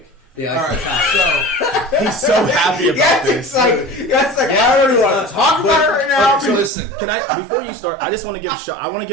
The All Eiffel right, Tower. He's so happy about this. I don't even want to talk about it right now. Okay, so listen, can I before you start? I just want to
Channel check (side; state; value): left; drops out; at 6.7 s